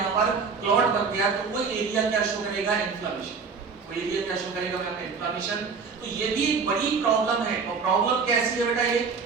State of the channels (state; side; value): quieter; left; 5.2 dB